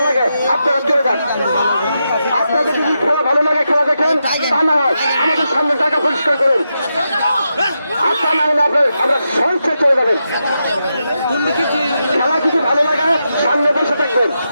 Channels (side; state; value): both; inverted; correlation -0.86